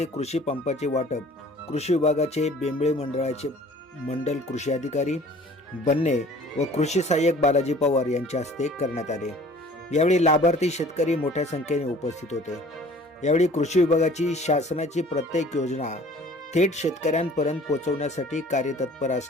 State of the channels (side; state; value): both; normal; correlation 0.50